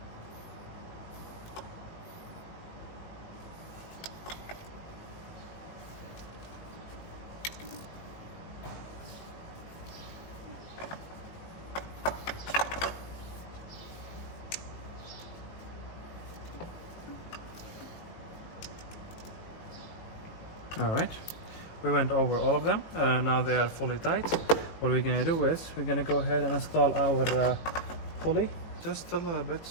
All right, we went over all of them. Now they are fully tight. What we're gonna do is we're gonna go ahead and install our pulley just a little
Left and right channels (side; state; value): right; late; 19 ms